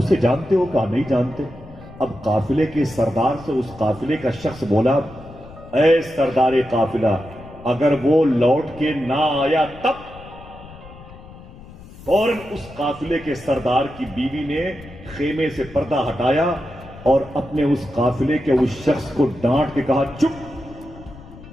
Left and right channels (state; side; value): noise; left; rumble, 18 dB below the sound